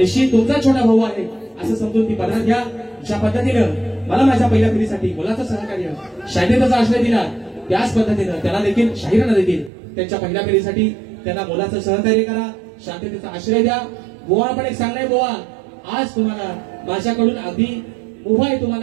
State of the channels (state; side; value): drops out; left; at 9.7 s